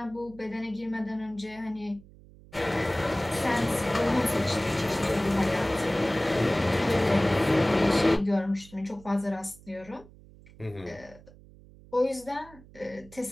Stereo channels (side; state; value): right; noise; hum, 22 dB below the sound